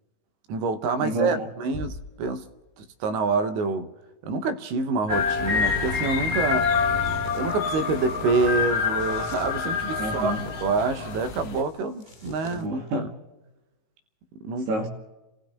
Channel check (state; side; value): late; left; 18 ms